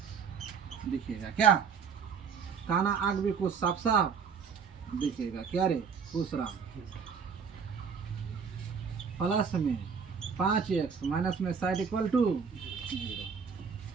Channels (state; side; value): quieter; left; 6.3 dB